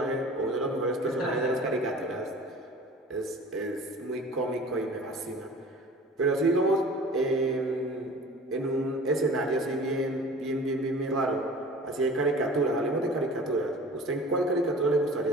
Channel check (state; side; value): normal; both; correlation 0.42